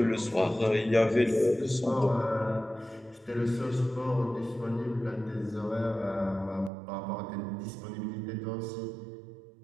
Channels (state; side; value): drops out; left; at 6.7 s